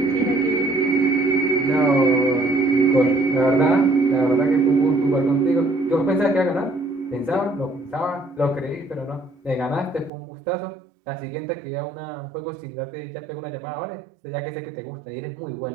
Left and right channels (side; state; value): left; drops out; at 10.1 s